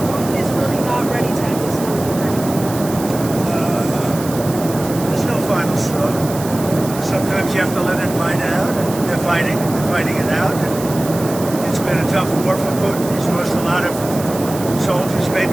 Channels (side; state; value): right; noise; hiss, 12 dB below the sound